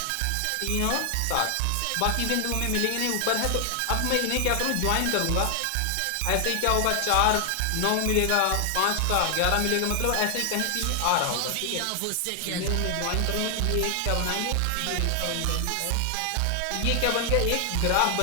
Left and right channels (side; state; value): both; different; correlation 0.00